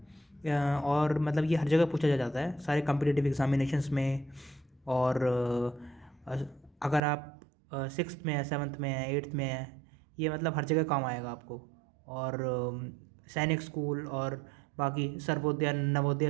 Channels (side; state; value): left; drops out; at 7.0 s